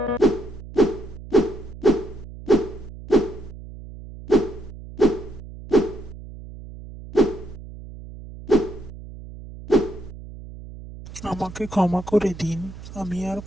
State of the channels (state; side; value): noise; right; hum, 14 dB below the sound